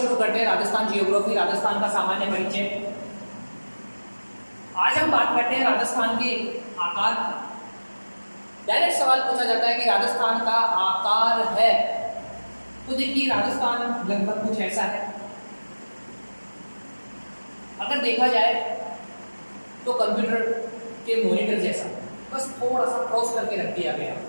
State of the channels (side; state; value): both; inverted; correlation -1.00